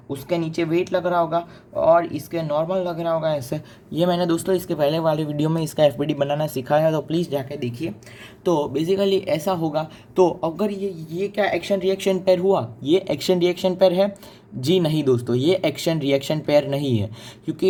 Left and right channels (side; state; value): both; identical; correlation 1.00